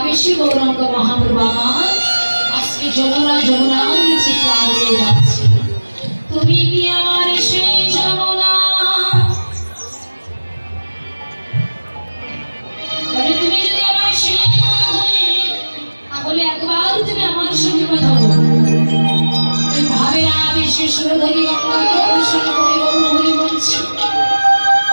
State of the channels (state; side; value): inverted; both; correlation -1.00